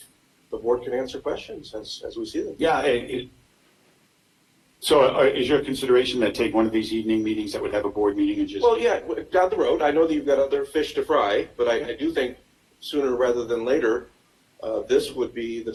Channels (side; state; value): both; identical; correlation 1.00